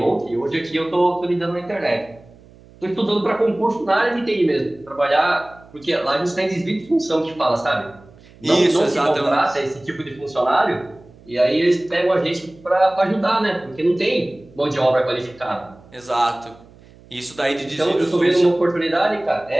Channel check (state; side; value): noise; right; hum, 25 dB below the sound